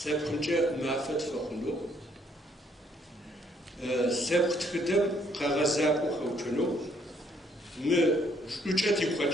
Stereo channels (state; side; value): normal; both; correlation 0.67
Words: ما فتح خلق سبخت خدم قغزاب وخوجنو ما أوجا